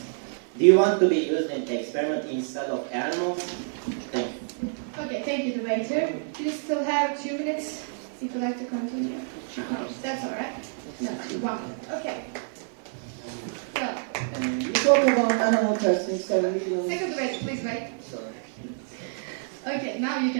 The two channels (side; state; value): left; silent; 55 dB below the other